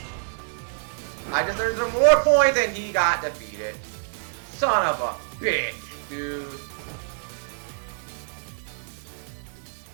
I just earned some more points and he got defeated. Son of a bitch, dude.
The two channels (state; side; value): silent; left; digital silence